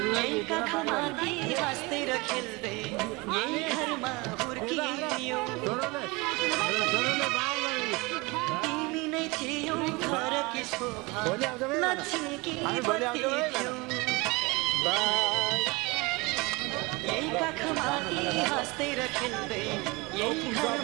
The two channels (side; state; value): left; quieter; 25.1 dB